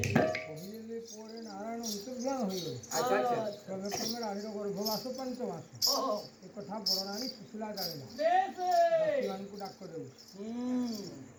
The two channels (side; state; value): both; identical; correlation 1.00